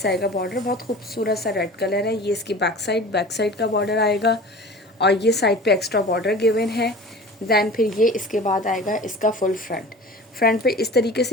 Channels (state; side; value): normal; both; correlation 0.39